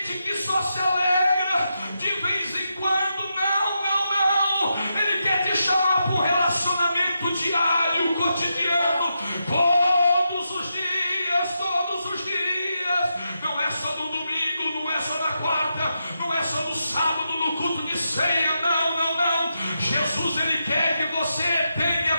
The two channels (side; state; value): both; inverted; correlation -0.85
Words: que só se alegra de vez em quando. Não, Ele quer te chamar para um relacionamento diário, cotidiano, todos os dias,